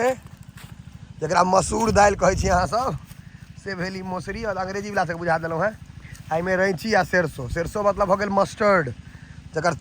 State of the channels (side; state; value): both; identical; correlation 1.00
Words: जकरा मसूर दालि कहै छी अहाँ सब से भेली मौसरी और अंग्रेजी वाला से बुझा देलहुँ हैं। एहिमे रैंची आ सरसों। सरसों मतलब हो गेल मस्टर्ड जकर